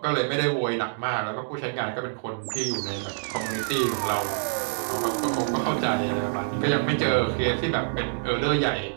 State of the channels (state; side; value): silent; left; digital silence